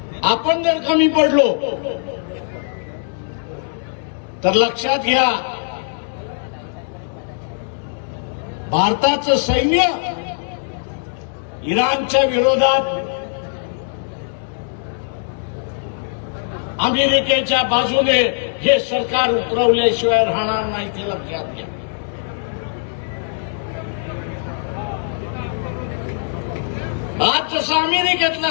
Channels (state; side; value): silent; right; digital silence